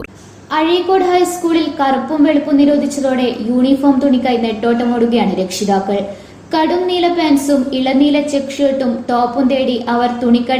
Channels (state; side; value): identical; both; correlation 1.00